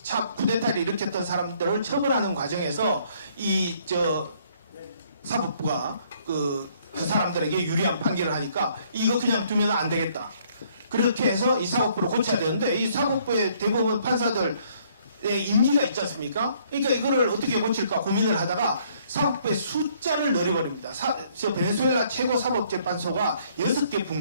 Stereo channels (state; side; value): inverted; both; correlation -0.64